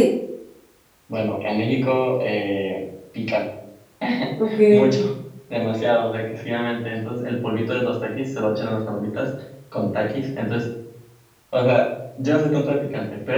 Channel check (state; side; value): identical; both; correlation 1.00